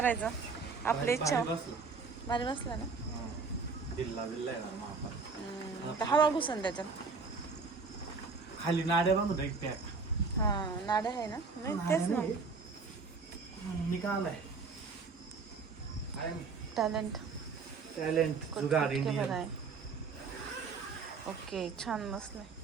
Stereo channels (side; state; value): left; quieter; 4.6 dB